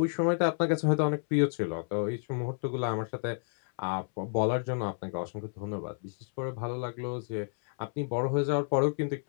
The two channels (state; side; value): silent; right; 58 dB below the other